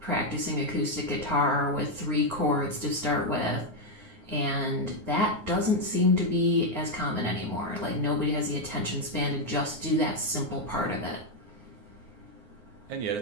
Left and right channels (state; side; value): late; left; 9.5 ms